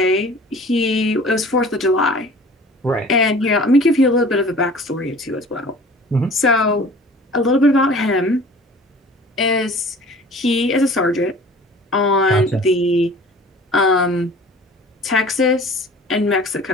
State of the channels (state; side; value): normal; both; correlation 0.45